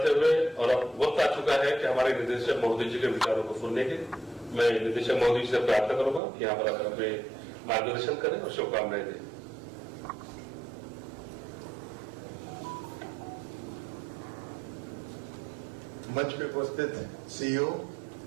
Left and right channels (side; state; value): left; drops out; at 6.2 s